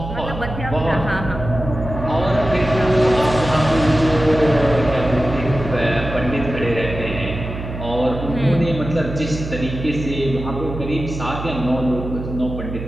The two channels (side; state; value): right; noise; hum, 8 dB below the sound